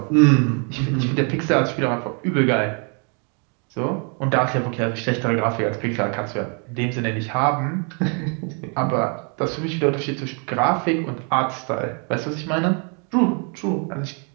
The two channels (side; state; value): left; quieter; 37.6 dB